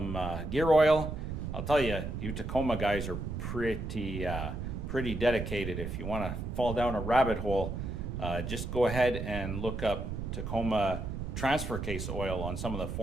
gear oil. I'll tell you, you Tacoma guys are pretty dedicated. If you want to fall down a rabbit hole, just go ahead and look up Tacoma transfer case oil on some of the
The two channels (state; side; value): noise; right; rumble, 4 dB below the sound